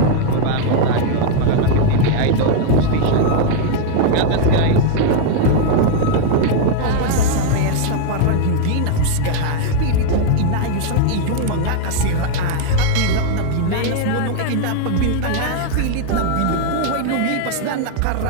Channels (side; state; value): both; different; correlation 0.00